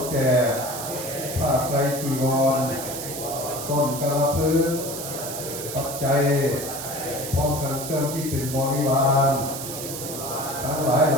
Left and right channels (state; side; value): noise; right; hiss, 7 dB below the sound